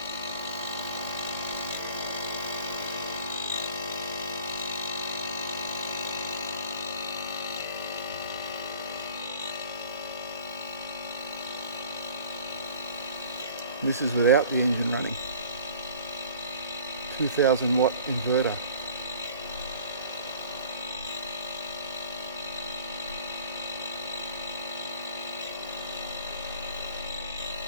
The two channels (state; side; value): inverted; both; correlation -0.48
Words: This is without the engine running. 2000 watt inverter.